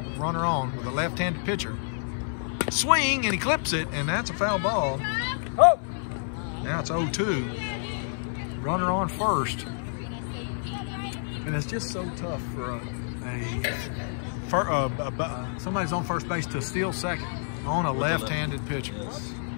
with runner on with a left-handed pitcher. Swing, and he clips it, and that's a foul ball. Oh! Now it's 0-2. Runner on first. And it's just so tough for somebody's on first base to steal second on a left-handed pitcher. Yes.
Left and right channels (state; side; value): silent; right; 59 dB below the other